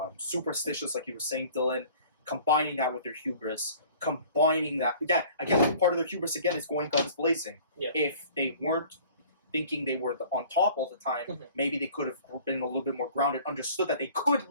superstitious, like you were saying, Dylan, combining that with their hubris, combining that, again, part of their hubris, again, is going guns blazing. Yeah. If they weren't thinking they were on top all the time, Mhm. maybe they could have been a little bit more grounded, understood that they could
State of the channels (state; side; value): inverted; both; correlation -0.49